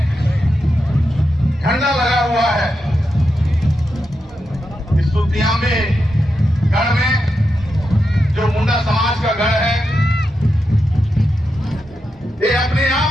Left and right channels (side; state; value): both; normal; correlation 0.87